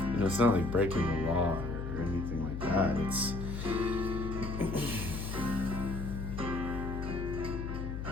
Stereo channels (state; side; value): noise; left; hum, 5 dB below the sound